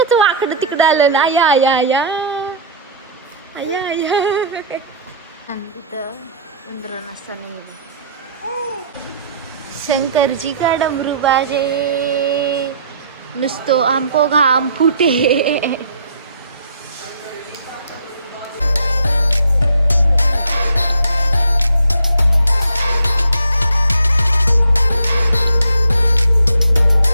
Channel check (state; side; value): inverted; both; correlation -0.53